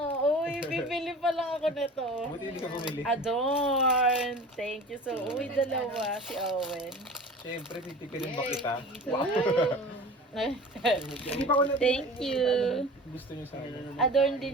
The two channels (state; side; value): normal; both; correlation 0.38